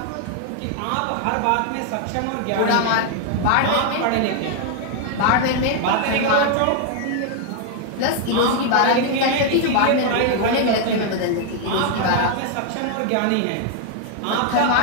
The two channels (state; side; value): different; both; correlation 0.00